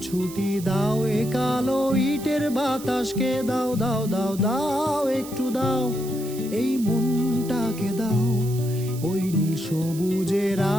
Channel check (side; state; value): right; noise; hiss, 15 dB below the sound